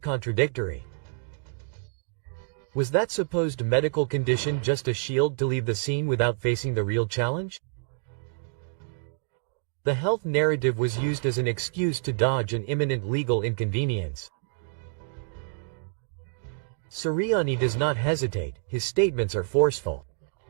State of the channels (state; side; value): silent; left; digital silence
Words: Was that supposed medical condition just a shield to leave the scene without facing the real challenge? The health narrative was used as an excuse to dodge an imminent legal inconvenience. CERIANI does not hesitate, his statements are forceful.